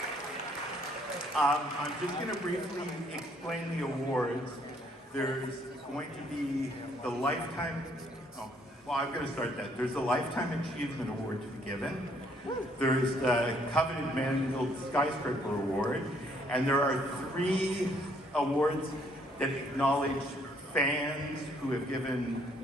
I'm just going to briefly explain the awards. There's going to be the Lifetime, I'm going to start that. There's the Lifetime Achievement Award to be given. There's the Coveted Man-Built Skyscraper Award. And there are 3 awards that acknowledge fans who have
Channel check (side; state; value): both; normal; correlation 0.66